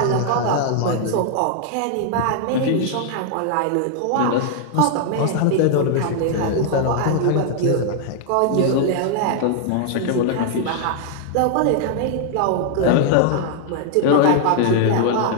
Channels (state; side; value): different; both; correlation 0.00